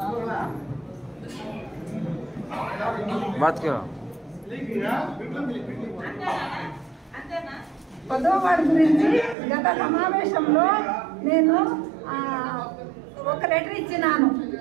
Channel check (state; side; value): drops out; left; at 9.3 s